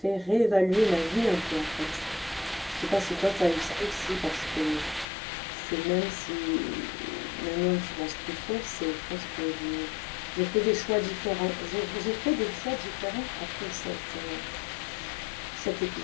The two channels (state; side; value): drops out; right; at 5.1 s